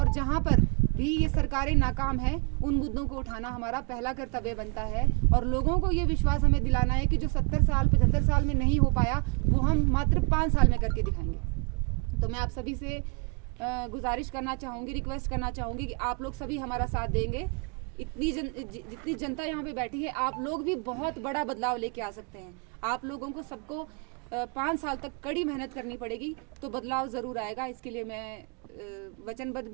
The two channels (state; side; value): quieter; left; 34.1 dB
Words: जहां पर भी ये सरकारें नाकाम हैं, उन मुद्दों को उठाना हमारा पहला कर्तव्य बनता है। और लोगों को ये विश्वास हमें दिलाना है कि जो 70 साल 75 साल में नहीं हो पाया, वो हम मात्र 5 साल में करके दिखाएंगे। तो मैं आप सभी से गुजारिश करना चाहूँगी, रिक्वेस्ट करना चाहूँगी कि आप लोग सभी हमारा साथ देंगे। जितनी जनता यहाँ पे बैठी है, आप लोग भी बहुत बड़ा बदलाव लेके आ सकते हैं। आप लोगों को सबको 5 साल तक कड़ी मेहनत करनी पड़ेगी, तो बदलाव ज़रूर आएगा। इसके लिए मैं वचनबद्ध